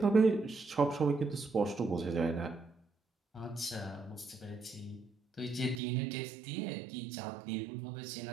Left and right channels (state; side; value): drops out; left; at 5.8 s